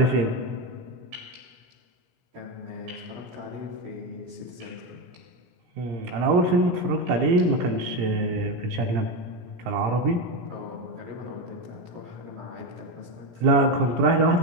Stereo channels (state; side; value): late; left; 17 ms